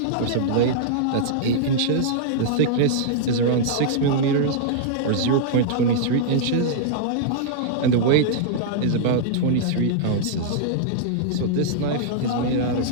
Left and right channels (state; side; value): different; both; correlation -0.02